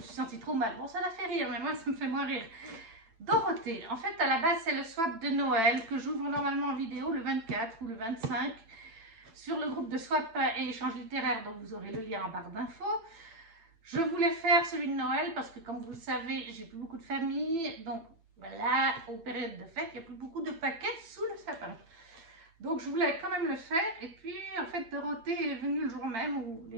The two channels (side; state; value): left; late; 9.0 ms